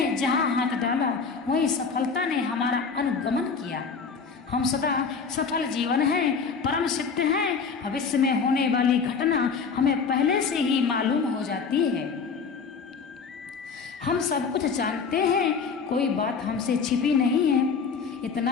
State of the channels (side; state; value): right; quieter; 5.4 dB